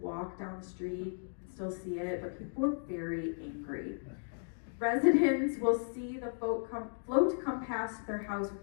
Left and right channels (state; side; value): silent; right; digital silence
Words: down the street and still see it, but people are very angry. Residents will see the float come past their house